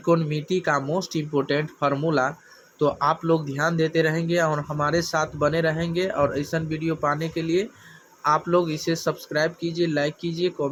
का मोस्ट इम्पोर्टेंट फार्मूला, तो आप लोग ध्यान देते रहेंगे और हमारे साथ बने रहेंगे। और ऐसा वीडियो पाने के लिए आप लोग इसे सब्सक्राइब कीजिए, लाइक कीजिए,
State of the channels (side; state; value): both; identical; correlation 1.00